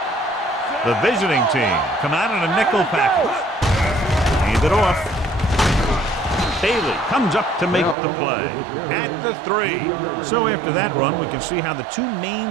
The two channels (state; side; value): drops out; left; at 8.0 s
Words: The visiting team come out in a nickel package. Hand it off. Bailey comes up to make the play at the 3. So after that run, we can see how the 2